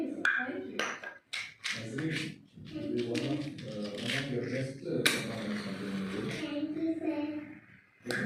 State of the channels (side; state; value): both; identical; correlation 1.00